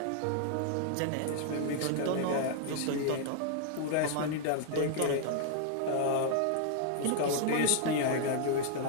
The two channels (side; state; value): both; different; correlation -0.01